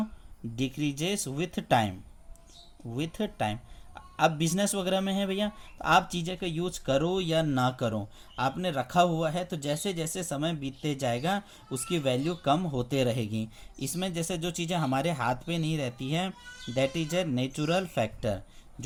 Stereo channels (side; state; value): both; identical; correlation 1.00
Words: decreases with time, with time. अब बिजनेस वगैरह में है भैया, आप चीज़ें का यूज करो या ना करो, आपने रखा हुआ है तो जैसे जैसे समय बीतते जाएगा उसकी वैल्यू कम होते रहेगी। इसमें जैसे जो चीज़ें हमारे हाथ पे नहीं रहती हैं that is a natural factor,